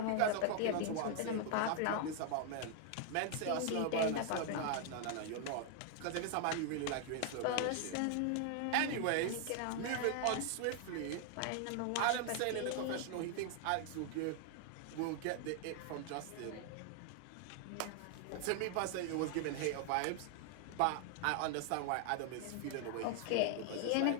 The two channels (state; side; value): different; both; correlation 0.00